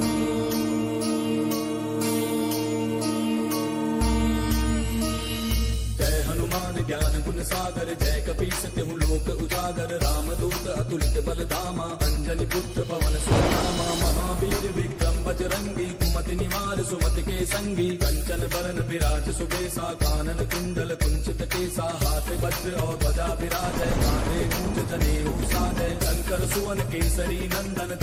जय हनुमान ज्ञान गुण सागर जय कपीस तिहु लोक उजागर रामदूत अतुलित बल धामा अंजनी पुत्र पवन सुत नामा महावीर विक्रम बजरंगी कुमति निवार सुमति के संगी कंचन बरन विराज सुबेसा कानन कुंडल कुंचित केसा हाथ वज्र और ध्वजा विराज कांधे मूंज जनेऊ साजय शंकर सुवन केसरी नंदन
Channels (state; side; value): identical; both; correlation 1.00